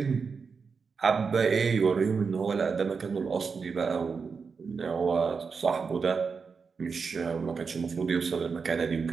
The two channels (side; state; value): left; quieter; 5.3 dB